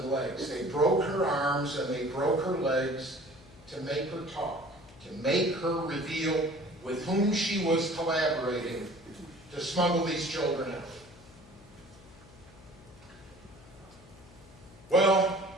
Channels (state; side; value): noise; left; hum, 22 dB below the sound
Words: legs. They broke her arms and they broke her legs to make her talk, to make her reveal with whom she was collaborating to smuggle these children out. Well,